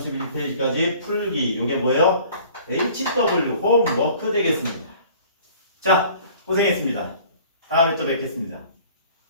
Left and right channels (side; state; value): both; inverted; correlation -0.50